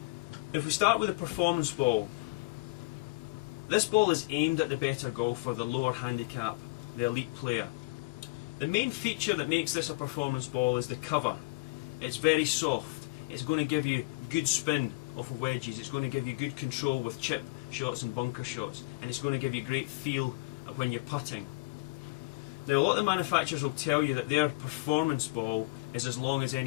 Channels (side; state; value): right; quieter; 26.1 dB